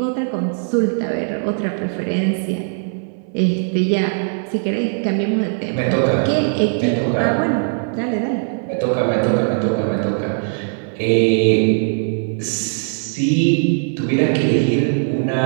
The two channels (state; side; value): silent; left; 62 dB below the other